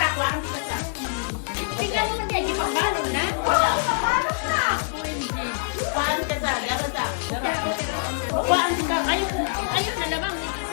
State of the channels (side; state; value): right; silent; digital silence